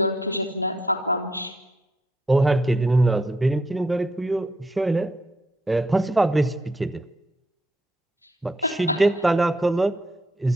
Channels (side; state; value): both; normal; correlation 0.74